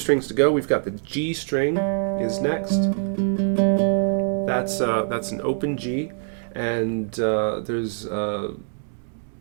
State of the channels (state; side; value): silent; left; digital silence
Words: to go. We've got the G string is next. That's an open G, and there's a